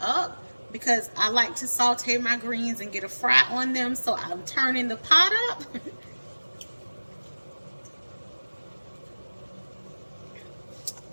because I like to saute my greens and get a fry on them, so I'm turning the pot up.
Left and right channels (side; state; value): both; inverted; correlation -1.00